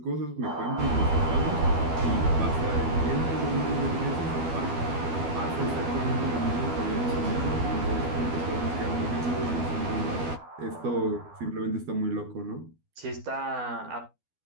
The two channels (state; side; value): late; left; 12 ms